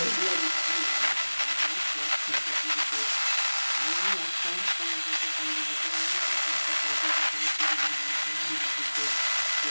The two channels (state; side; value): inverted; both; correlation -1.00